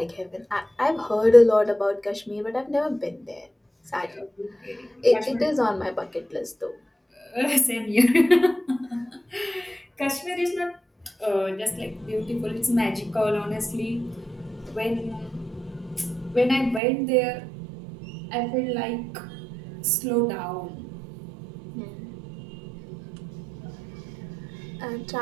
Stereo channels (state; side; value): drops out; left; at 16.8 s